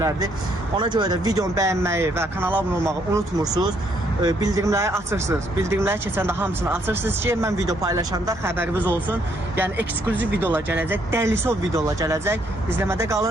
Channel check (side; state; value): both; normal; correlation 0.70